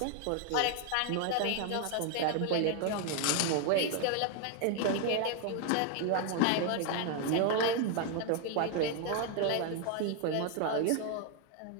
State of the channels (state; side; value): different; both; correlation 0.00